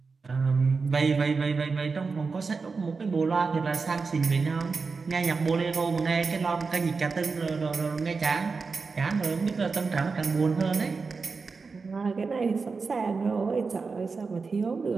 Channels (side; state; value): left; quieter; 4.6 dB